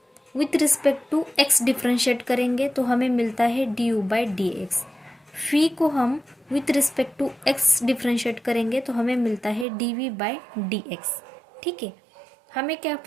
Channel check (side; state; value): left; drops out; at 9.7 s